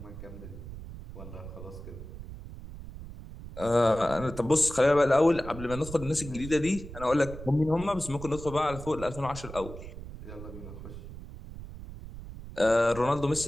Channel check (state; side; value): noise; right; rumble, 12 dB below the sound